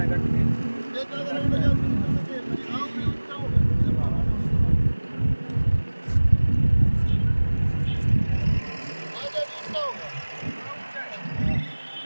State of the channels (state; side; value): inverted; both; correlation -1.00